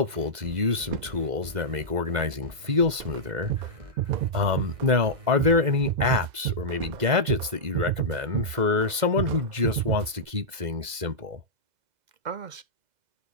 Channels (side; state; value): left; late; 2.0 ms